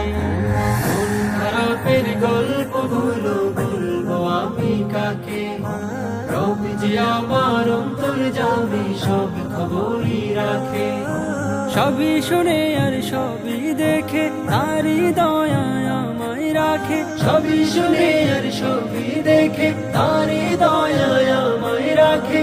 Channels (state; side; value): identical; both; correlation 1.00